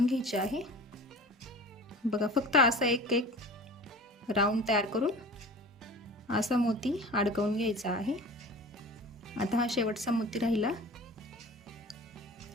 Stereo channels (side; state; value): both; normal; correlation 0.39